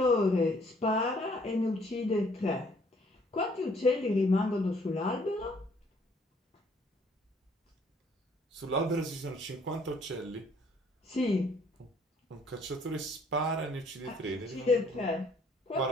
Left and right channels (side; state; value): both; normal; correlation 0.62